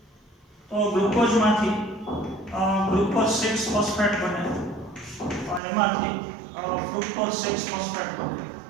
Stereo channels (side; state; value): left; drops out; at 5.6 s